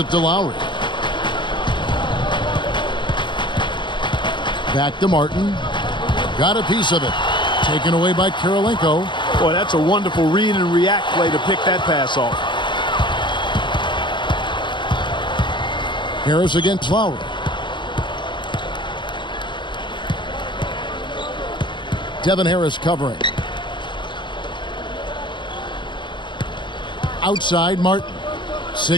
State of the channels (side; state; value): right; late; 0.23 ms